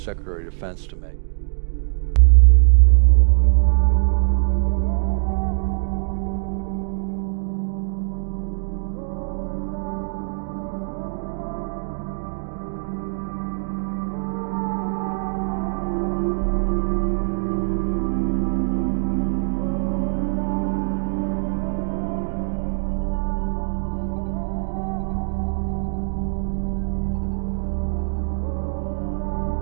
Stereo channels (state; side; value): silent; left; digital silence